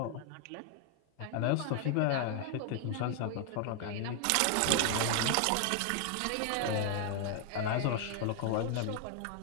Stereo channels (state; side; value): different; both; correlation 0.00